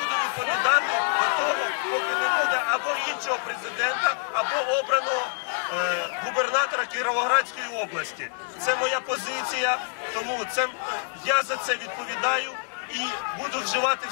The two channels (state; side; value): silent; right; digital silence